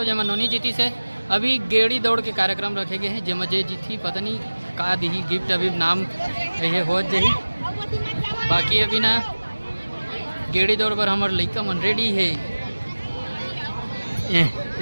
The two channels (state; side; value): inverted; both; correlation -1.00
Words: जब नोनी जीती से। अभी गेड़ी दौड़ के कार्यक्रम रखे गए हैं जब जे जीती पता नहीं का दी गिफ्ट अभी नाम ये हो जाही। बाकी अभी ना गेड़ी दौड़ पर हमारे लड़का मन रेडी है।